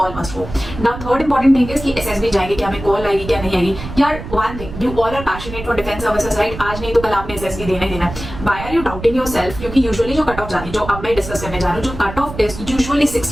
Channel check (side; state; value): right; noise; rumble, 11 dB below the sound